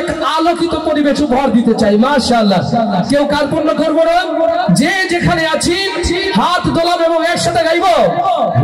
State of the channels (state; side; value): identical; both; correlation 1.00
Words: আলোকিত পরিবেশ উপহার দিতে চাই। মাশাআল্লাহ। কেউ কার্পণ্য করবো না, যে যেখানে আছি হাত দোলাবো এবং একসাথে গাইবো